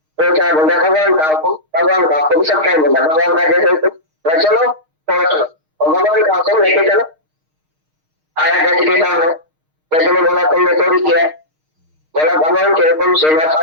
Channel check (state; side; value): late; left; 6.4 ms